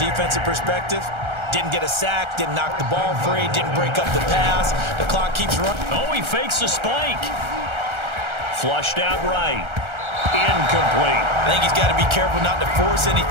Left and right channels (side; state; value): left; late; 1.3 ms